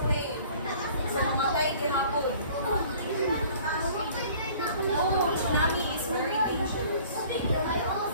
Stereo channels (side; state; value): both; inverted; correlation -0.51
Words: wave. So, mamatay gihapon. Oh, tsunami is very dangerous.